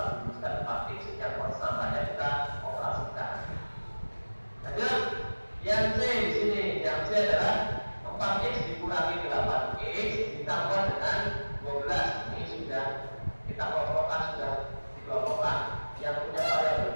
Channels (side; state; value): both; inverted; correlation -1.00